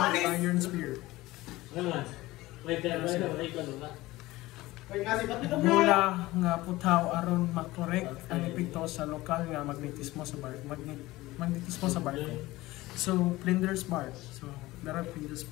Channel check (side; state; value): right; quieter; 18.7 dB